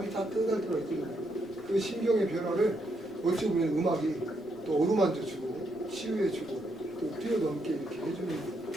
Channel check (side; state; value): both; normal; correlation 0.78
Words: 따뜻할 때가 있거든요. 그 심경의 변화를 어찌 보면 음악이 또 어루만져주고 치유해주고 또 뛰어넘게 이렇게 해주는